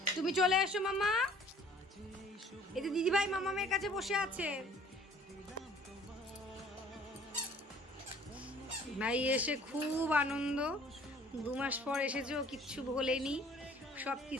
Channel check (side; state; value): both; normal; correlation 0.54